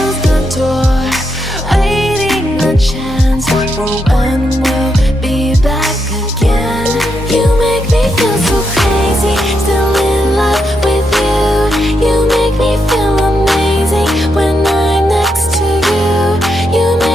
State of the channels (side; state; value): both; normal; correlation 0.82